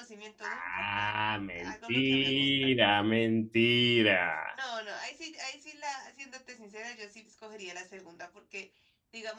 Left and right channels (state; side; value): identical; both; correlation 1.00